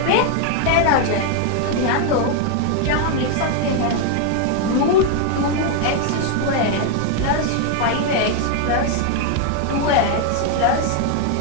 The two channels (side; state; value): both; different; correlation 0.00